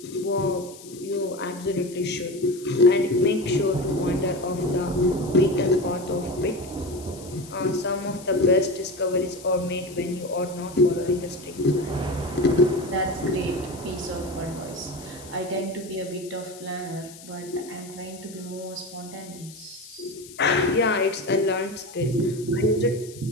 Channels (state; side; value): noise; left; hiss, 18 dB below the sound